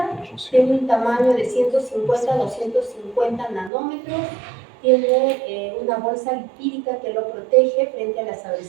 tiene un tamaño de 150 a 250 nanómetros, tiene una bolsa lipídica que lo protege frente a las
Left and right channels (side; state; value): left; drops out; at 3.7 s